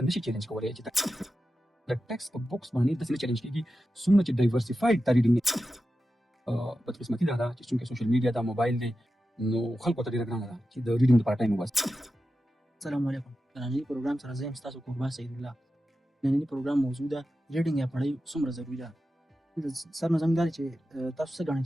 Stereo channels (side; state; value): both; normal; correlation 0.92